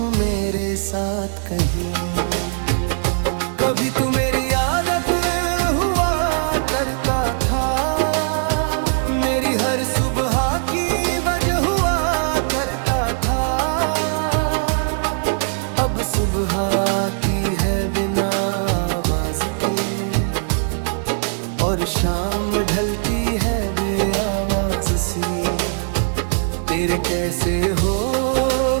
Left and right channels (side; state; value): left; silent; digital silence